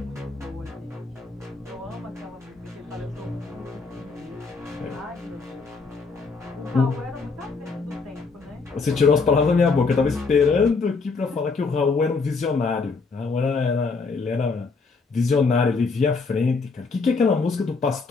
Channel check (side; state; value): right; quieter; 4.4 dB